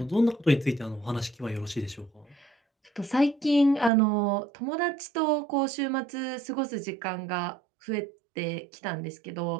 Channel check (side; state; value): left; drops out; at 3.9 s